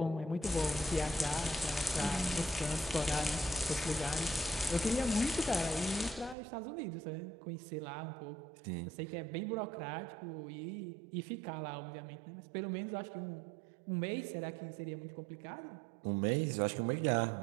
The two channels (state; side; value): drops out; left; at 6.4 s